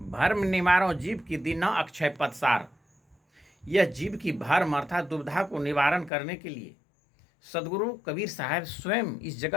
निवारो जीव की दीना अक्षय पदसार। यह जीव की भर्म अर्थात दुविधा को निवारण करने के लिए सदगुरु कबीर साहब स्वयं इस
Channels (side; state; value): right; drops out; at 6.1 s